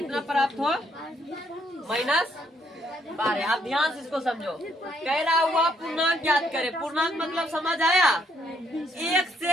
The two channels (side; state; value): both; normal; correlation 0.71